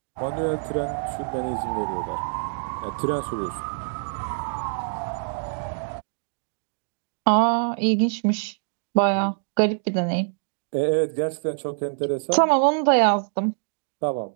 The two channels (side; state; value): left; silent; digital silence